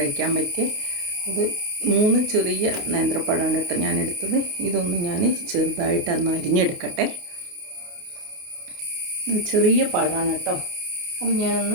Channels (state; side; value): late; left; 28 ms